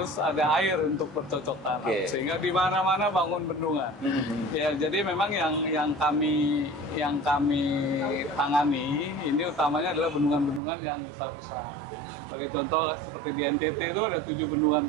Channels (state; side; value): drops out; left; at 10.6 s